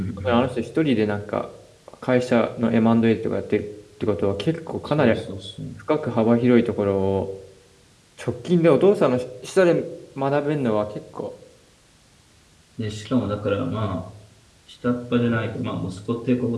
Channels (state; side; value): identical; both; correlation 1.00